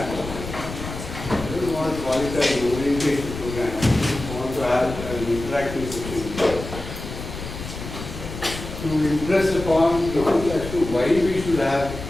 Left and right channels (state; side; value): noise; left; rumble, 9 dB below the sound